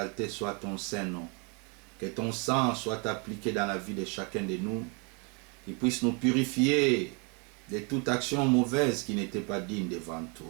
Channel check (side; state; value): left; quieter; 33.9 dB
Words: soit ton Saint-Nom. Que ton sang soit appliqué dans la vie de chacun de nous, qu'il puisse nous purifier de toute action mauvaise qui n'était pas digne devant